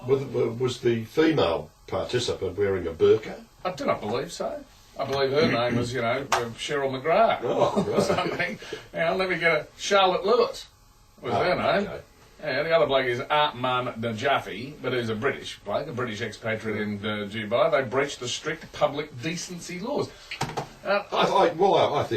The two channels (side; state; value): both; identical; correlation 1.00